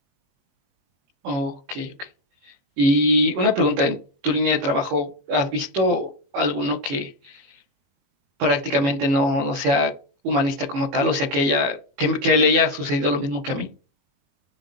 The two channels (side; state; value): left; late; 21 ms